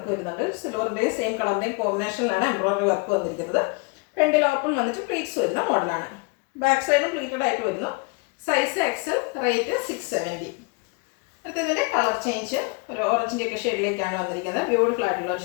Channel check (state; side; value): quieter; right; 31.3 dB